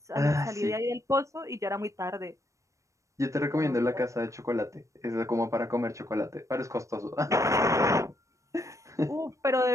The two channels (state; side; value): late; left; 0.15 ms